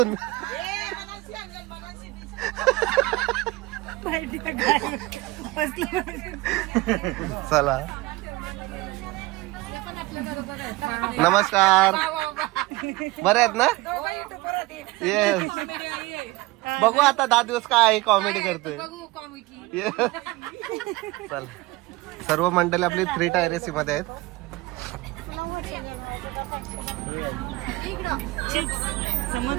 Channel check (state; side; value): quieter; left; 20.9 dB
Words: चला नमस्कार. बरे आहेत ना. येस. बघू आता 10 दिवस काय कॉमेडी करतोय. चला सर्व मंडळी आपली 3 टायर एसी मध्ये आहेत. चिप्स